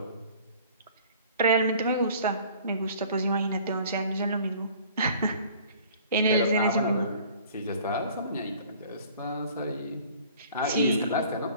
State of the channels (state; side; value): inverted; both; correlation -0.50